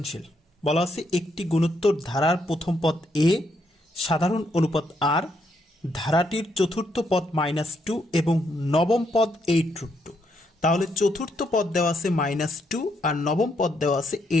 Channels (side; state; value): both; normal; correlation 0.76